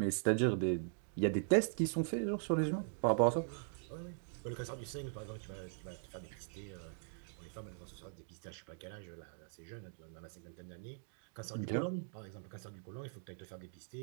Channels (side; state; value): left; silent; digital silence